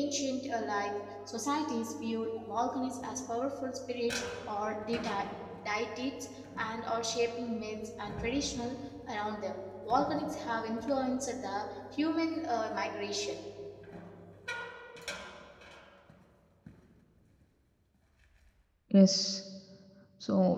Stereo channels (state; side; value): identical; both; correlation 1.00